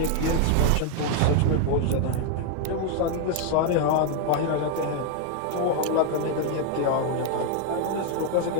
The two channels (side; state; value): both; different; correlation 0.00